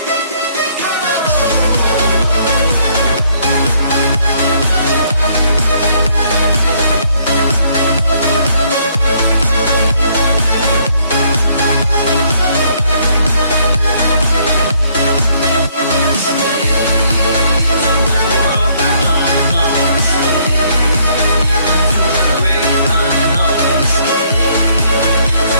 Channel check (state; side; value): inverted; both; correlation -0.67